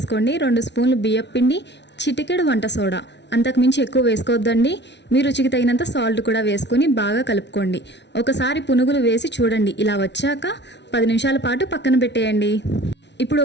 2 స్పూన్లు బియ్యం పిండి, చిటికెడు వంట సోడా. అంతకుమించి ఎక్కువ వేసుకోవద్దండి. మీ రుచికి తగినంత సాల్ట్ కూడా వేసుకొని బాగా కలుపుకోండి. ఒకసారి పునుగులు వేసి చూడండి. ఇలా వచ్చాక 10 నిమిషాల పాటు పక్కన పెట్టేయండి. ఇప్పుడు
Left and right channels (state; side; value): late; right; 0.50 ms